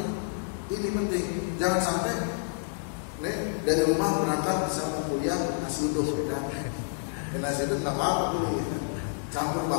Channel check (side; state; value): right; silent; 59 dB below the other